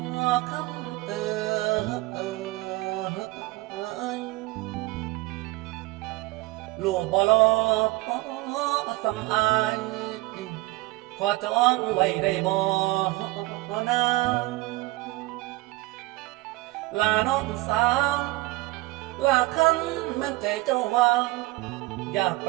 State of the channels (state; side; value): quieter; left; 20.3 dB